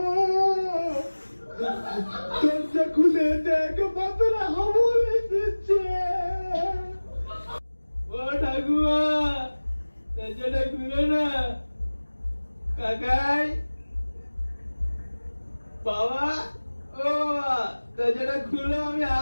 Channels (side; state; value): both; inverted; correlation -1.00